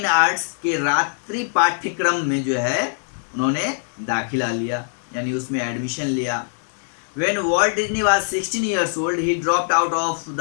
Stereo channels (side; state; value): right; silent; digital silence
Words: Arts के रात्रि पाठ्यक्रम में जो है उन्होंने दाखिला लिया, यानी उसमें एडमिशन लिया। When Walt Disney was 16 years old, he dropped out of